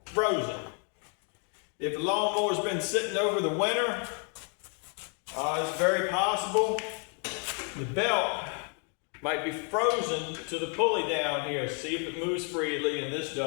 frozen. If the lawnmower's been sitting over the winter, it's very possible the belt might be frozen to the pulley down here. See if it moves freely, and this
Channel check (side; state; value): right; quieter; 39.6 dB